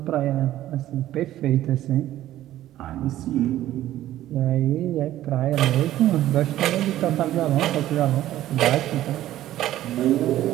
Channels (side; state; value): left; quieter; 13.6 dB